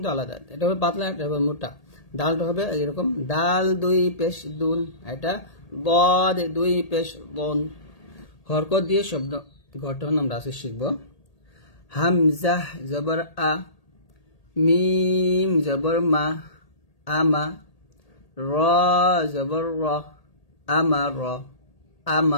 আলাদা, এটা হবে পাতলা, এটা হবে মোটা। ডালটা হবে এরকম, ডাল দুই পেশ দুন, এটা দদ দুই পেশ বন। হরকত দিয়ে শব্দ গঠন আমরা আজকে শিখব। হামজাহ জবর আ, মিম জবর মা, আমা, র জবর র, আমার,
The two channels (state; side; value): late; right; 1.8 ms